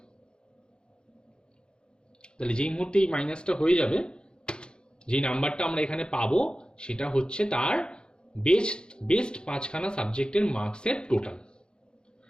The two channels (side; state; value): right; late; 0.050 ms